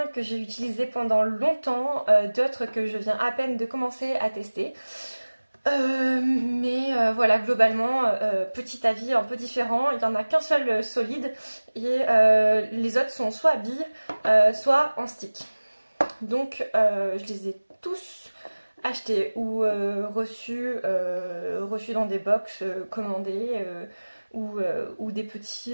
que j'ai utilisés pendant longtemps, d'autres que je viens à peine de commencer à tester. Mais voilà, globalement, petit avis un peu différent. Il n'y en a qu'un seul solide et les autres sont soit à billes, soit en stick. Donc je les ai tous achetés ou reçus dans des box commandés ou des petits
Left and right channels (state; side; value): inverted; both; correlation -1.00